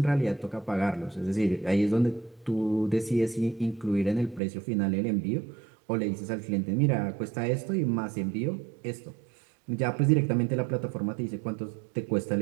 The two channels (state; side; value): drops out; left; at 4.4 s